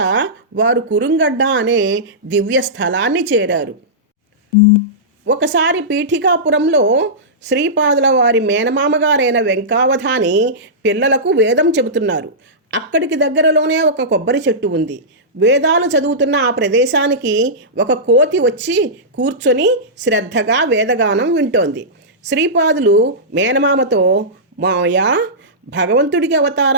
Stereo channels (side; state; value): both; normal; correlation -0.16